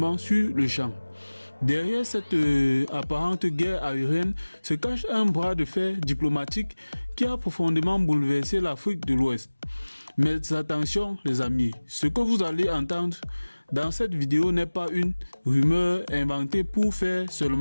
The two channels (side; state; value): both; inverted; correlation -1.00